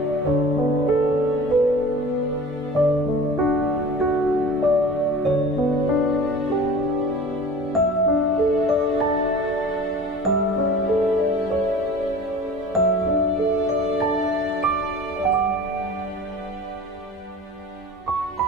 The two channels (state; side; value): normal; both; correlation 0.40